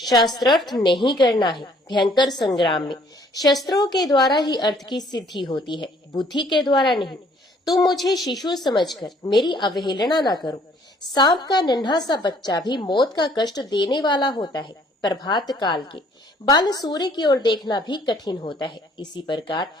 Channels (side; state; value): both; normal; correlation 0.60